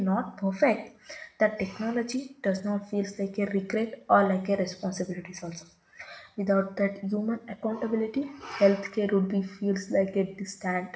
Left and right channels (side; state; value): both; identical; correlation 1.00